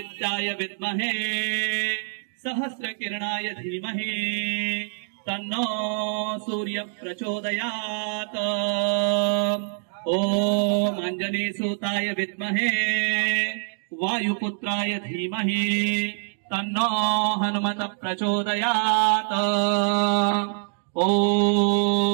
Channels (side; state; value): left; silent; digital silence